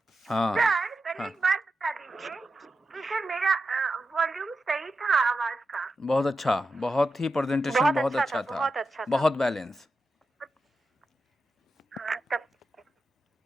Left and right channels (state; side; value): normal; both; correlation 0.89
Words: हाँ सर पहले हाँ, एक बात बता दीजिए कि सर मेरा वॉल्यूम सही था आवाज का? बहुत अच्छा, बहुत ही प्रेजेंटेशन बहुत अच्छा था, बहुत अच्छा था। बहुत बैलेंस। हाँ तब।